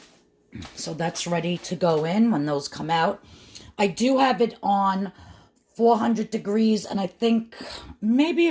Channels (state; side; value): identical; both; correlation 1.00